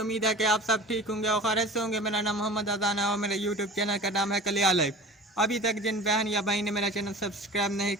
है कि आप सब ठीक होंगे और खैरियत से होंगे। मेरा नाम मोहम्मद अजान है और मेरे यूट्यूब चैनल का नाम है कलिया लाइव। अभी तक जिन बहन या भाई ने मेरा चैनल सब्सक्राइब नहीं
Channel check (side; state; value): both; normal; correlation 0.38